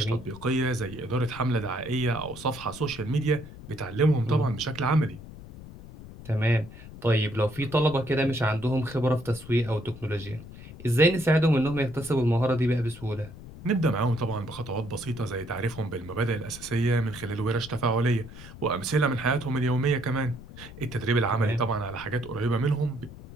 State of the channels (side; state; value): left; noise; rumble, 15 dB below the sound